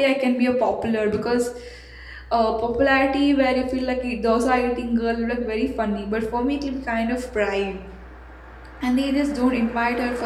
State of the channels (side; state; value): both; identical; correlation 1.00